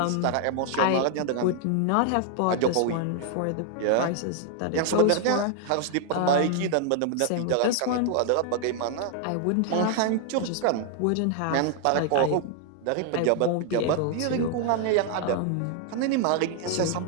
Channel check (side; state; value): both; different; correlation 0.00